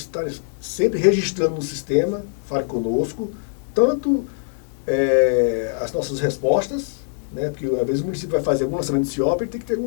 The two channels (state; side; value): silent; right; 62 dB below the other